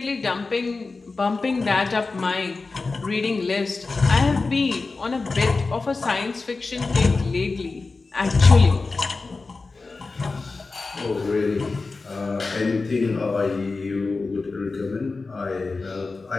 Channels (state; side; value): quieter; right; 3.9 dB